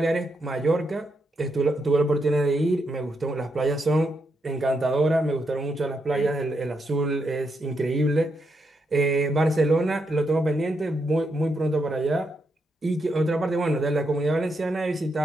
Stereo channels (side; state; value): both; normal; correlation 0.81